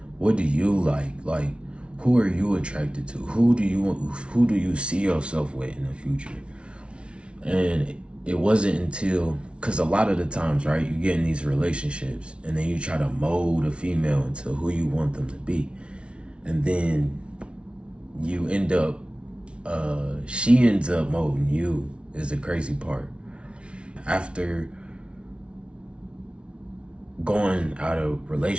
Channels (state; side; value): late; left; 0.059 ms